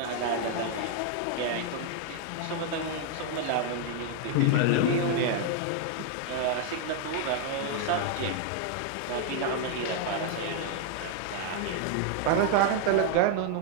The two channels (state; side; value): different; both; correlation 0.00